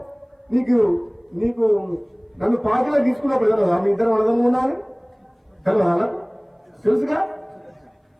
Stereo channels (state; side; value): identical; both; correlation 1.00